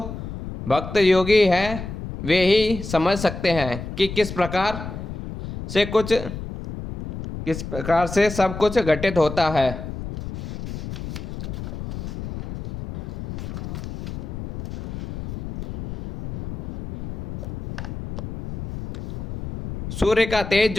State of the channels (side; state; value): left; noise; rumble, 8 dB below the sound